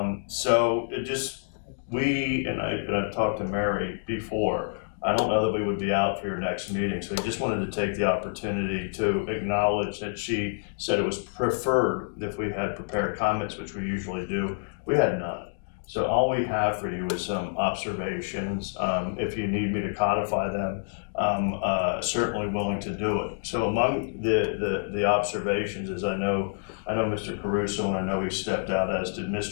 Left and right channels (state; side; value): silent; right; digital silence